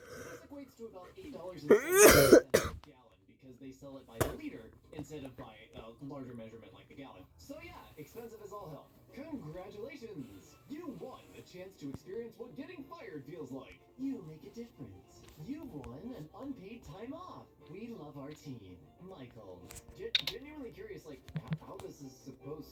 equates to about $8 a gallon because they sell it by the liter instead of by a larger measurement like the gallon. So yeah, expensive as all hell. Congratulations! You won the chance to experience what getting fired feels like. You make a difference. You won an unpaid time off. We love our team. Michael. Genuinely curious, like, how this is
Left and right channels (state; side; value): identical; both; correlation 1.00